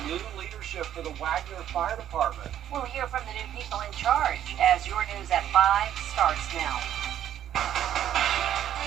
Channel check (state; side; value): quieter; left; 10.8 dB